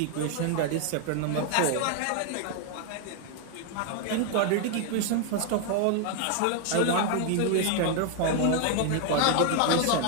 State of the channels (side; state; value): both; different; correlation 0.00